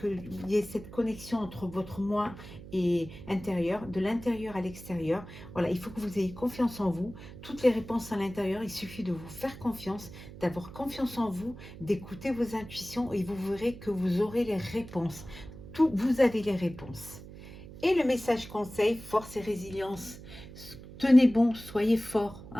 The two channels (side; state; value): right; noise; hum, 15 dB below the sound